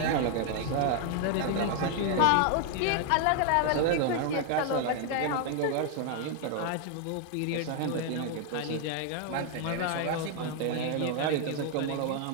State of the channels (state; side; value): different; both; correlation 0.00